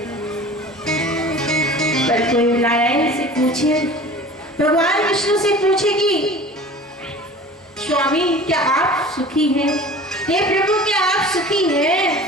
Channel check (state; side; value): normal; both; correlation 0.41